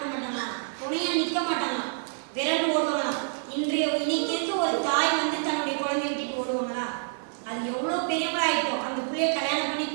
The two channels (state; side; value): silent; left; 60 dB below the other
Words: மாட்டாங்களாம்? துணையா நிக்க மாட்டாங்களாம், விரண்டு ஓடுவாங்களாம். இன்னைக்கு இருக்க ஒரு தாய் வந்து தன்னுடைய குழந்தைய விட்டுட்டு ஓடுவாங்களா? அது எவ்வளவு பெரியவங்களாயிட்டோம். அந்த பிள்ளைய கல்யாணம் பண்ணி